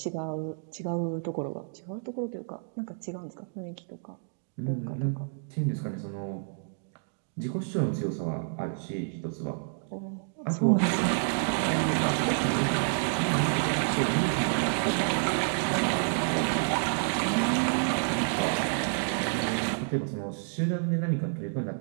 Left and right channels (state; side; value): silent; left; digital silence